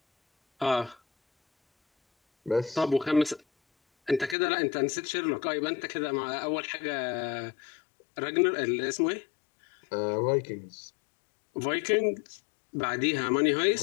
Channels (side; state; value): right; drops out; at 4.4 s